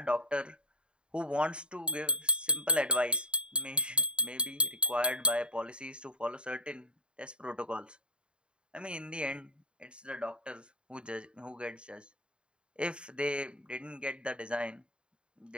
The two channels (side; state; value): left; late; 0.053 ms